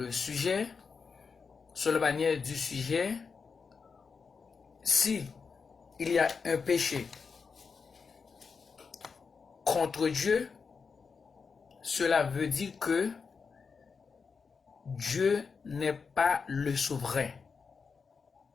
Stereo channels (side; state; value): right; quieter; 5.4 dB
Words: sujet, sur la manière du sujet. Si il y a un péché contre Dieu, cela veut dire que Dieu n'est pas le souverain.